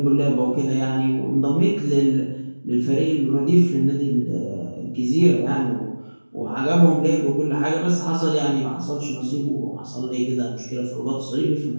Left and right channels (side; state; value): both; inverted; correlation -1.00